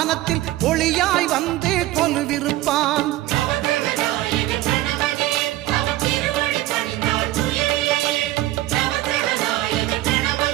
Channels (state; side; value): quieter; left; 16.2 dB